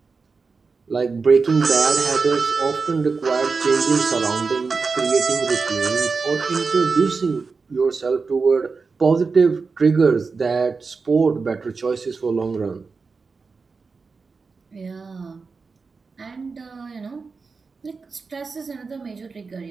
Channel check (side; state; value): left; quieter; 4.6 dB